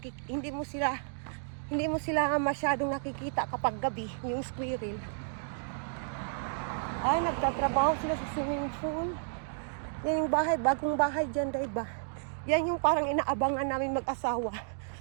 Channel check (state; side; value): silent; left; digital silence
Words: mo sila masyadong nakikita kapag gabi, yung squirrel. Ay, nagtatrabaho sila sa swimming pool. Yan yung bahay, bagong bahay dyan, day, ba? Yan yung parang inaabangan namin mag-asawa.